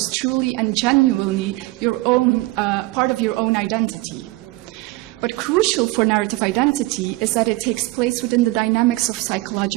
truly and genuinely your own, part of your own identity. But crucial for narrative identity is that it takes place within the dynamics of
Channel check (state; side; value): quieter; left; 20.6 dB